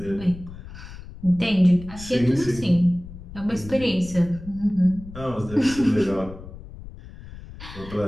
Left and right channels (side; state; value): left; noise; rumble, 15 dB below the sound